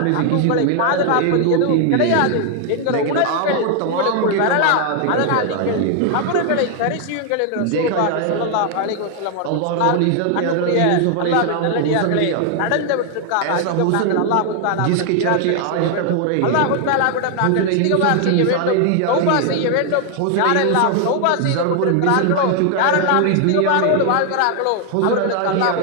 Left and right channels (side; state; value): both; different; correlation 0.00